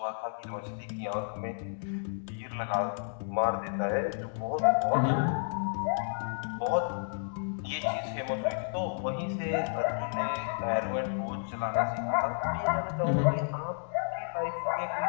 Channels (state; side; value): silent; right; digital silence